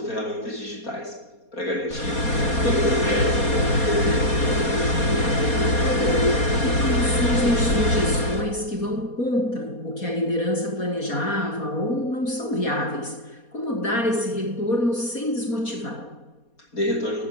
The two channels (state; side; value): late; right; 4.2 ms